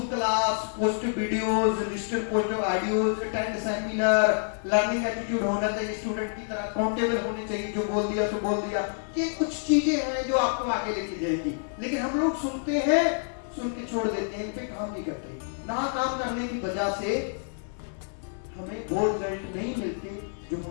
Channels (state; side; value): silent; right; 59 dB below the other